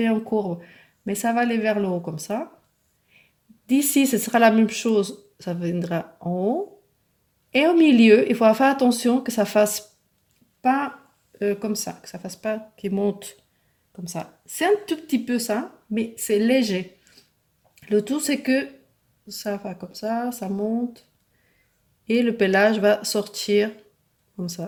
en courbe. Mais ça va aller vers le haut comme ça. D'ici, ce sera la même chose. Ça viendra en haut. Et au milieu, il faudra faire attention que ça fasse pas comme ça, que ça fasse pas qu'il monte comme ça. C'est un tout petit peu ça, mais c'est léger. Le tout, c'est que ça va comme ça monte, et le pelage va sortir comme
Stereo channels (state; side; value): identical; both; correlation 1.00